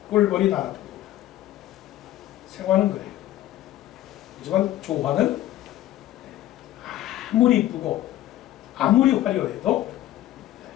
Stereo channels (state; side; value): quieter; right; 13.9 dB